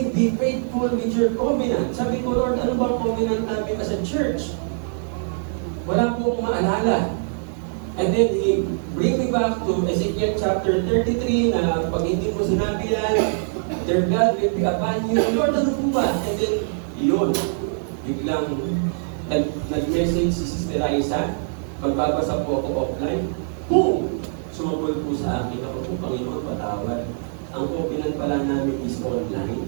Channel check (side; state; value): left; silent; digital silence